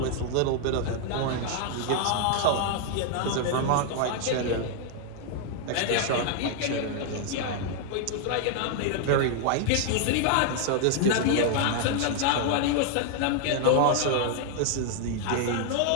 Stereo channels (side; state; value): both; different; correlation 0.00